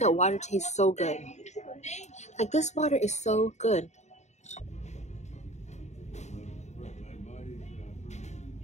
water tastes so good? Like, this water is so good.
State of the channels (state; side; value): late; right; 0.33 ms